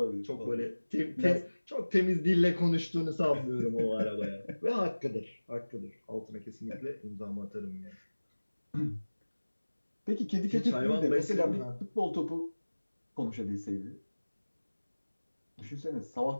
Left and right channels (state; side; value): inverted; both; correlation -1.00